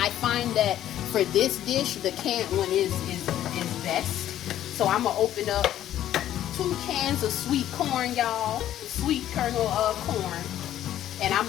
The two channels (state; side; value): quieter; right; 12.0 dB